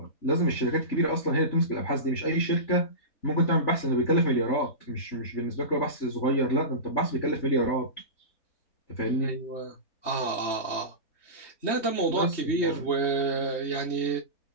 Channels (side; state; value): right; late; 3.2 ms